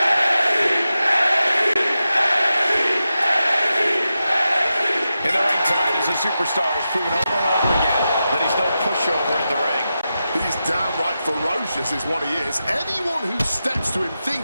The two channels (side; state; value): both; inverted; correlation -0.90